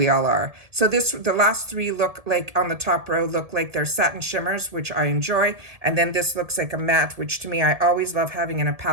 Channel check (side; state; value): left; late; 1.7 ms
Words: all are. So the last three look like, on the top row, look like they're satin shimmers, which I enjoy. And then this looks like a matte, which to me, I always love having in a